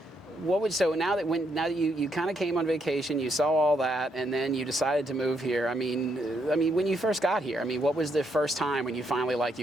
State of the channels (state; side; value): normal; both; correlation 0.77